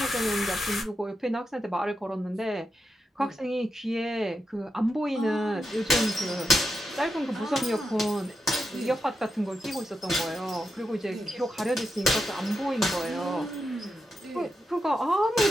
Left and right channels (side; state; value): both; normal; correlation 0.86